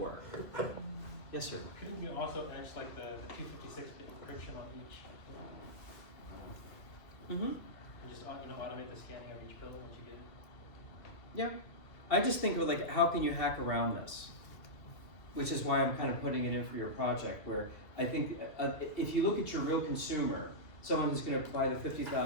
Yes, sir. Couldn't you also edge like the 256-bit encryption on each? Mm-hmm. And just automate the scanning of each bill once you get it? Yeah. I just think of like, how can you hack around this? Which is why I'm kind of putting it in for your project, where I think if you look at your real consumer, someone who's going to buy the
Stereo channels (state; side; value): late; right; 2.3 ms